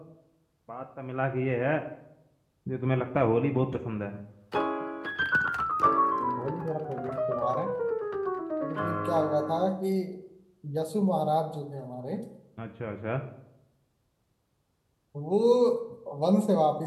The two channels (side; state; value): both; identical; correlation 1.00